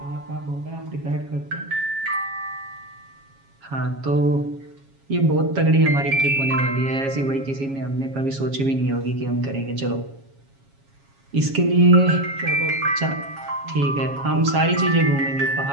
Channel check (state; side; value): late; left; 7.3 ms